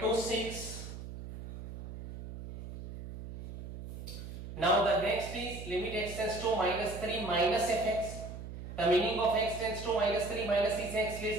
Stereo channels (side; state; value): right; noise; hum, 10 dB below the sound